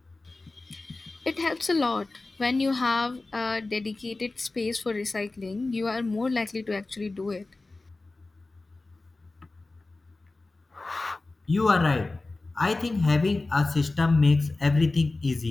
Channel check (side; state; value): right; quieter; 3.2 dB